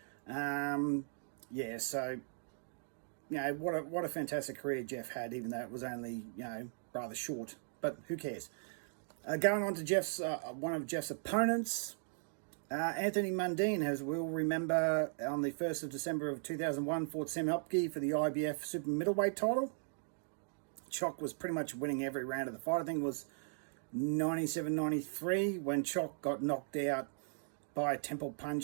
What a fantastic career Jeff had, even though it was only, rather short. But who cares? Going on to one of Jeff's opponents, Anthony Mundine, as we'll remember, on the 1st of December of 2001, fought Sam Hopke for the IBF super middleweight title. Chock was pretty much winning every round of the fight. I think it was 97-93 when Chock got knocked out by a temple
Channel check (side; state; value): left; silent; digital silence